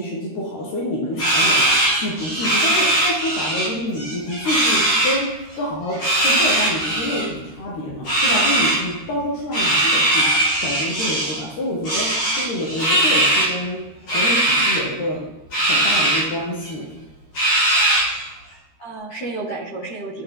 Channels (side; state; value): right; late; 13 ms